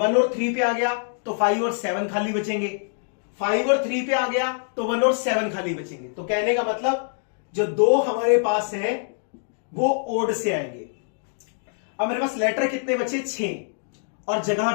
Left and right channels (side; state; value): right; silent; 62 dB below the other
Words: और 3 पे आ गया तो 5 और 7 खाली बचेंगे, 5 और 3 पे आ गया तो 1 और 7 खाली बचेंगे। तो कहने का मतलब जो 2 हमारे पास है वो ओड से आएंगे। अब मेरे पास लेटर कितने बचे, 6, और जगह